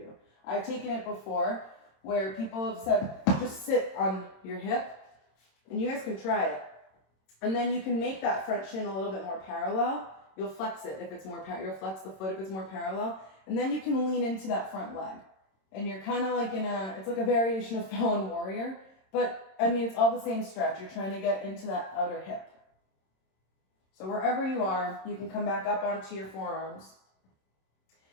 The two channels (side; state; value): right; late; 26 ms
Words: I've taken it before where people have said, just sit on your hip, and you guys can try it. And then you can make that front shin a little bit more parallel. You'll flex it if it's more you'll flex the foot if it's more parallel. And then you can lean into that front leg. And you're kind of like it's like a variation of fallen warrior. But, I mean, it's all the same stretch. You're trying to get into that outer hip. So wherever you are, you can come back up onto your forearms.